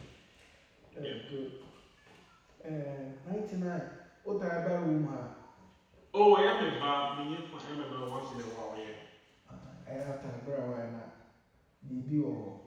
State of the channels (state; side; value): identical; both; correlation 1.00